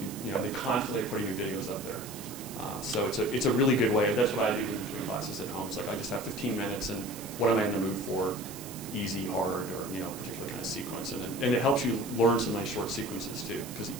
can, they constantly are putting new videos up there. So it's a really good way. That's what I do in between classes at home. It's like I just have 15 minutes, and what am I in the mood for? Easy, hard, or particular kind of sequence, and it helps you learn some nice short sequences too, because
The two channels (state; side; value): noise; right; hiss, 13 dB below the sound